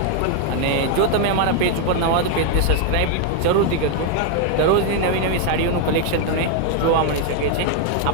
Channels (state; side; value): different; both; correlation 0.00